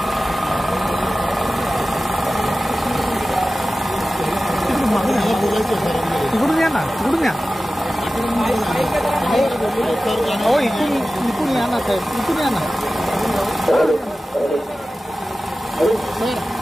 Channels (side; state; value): both; normal; correlation 0.96